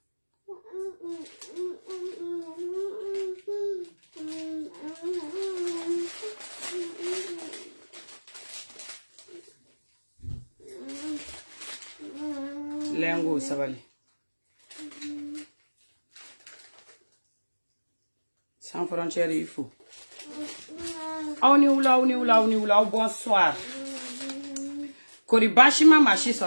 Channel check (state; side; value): inverted; both; correlation -1.00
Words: Lengo sabali. Sans frontières il faut. On y oula, bonsoir. Kori bashima mashi